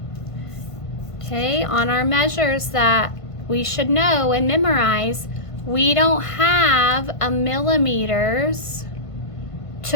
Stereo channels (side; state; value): right; late; 1.5 ms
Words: Okay, on our measures that we should know and memorize, we don't have a millimeters